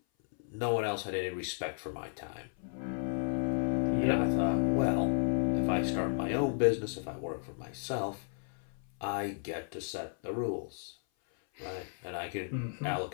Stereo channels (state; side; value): silent; right; 55 dB below the other